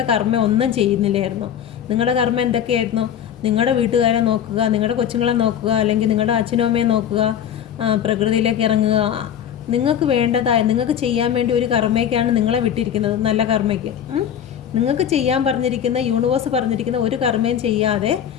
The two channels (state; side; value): quieter; right; 9.4 dB